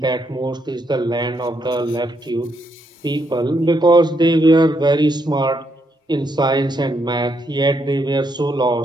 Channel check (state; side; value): normal; both; correlation 0.77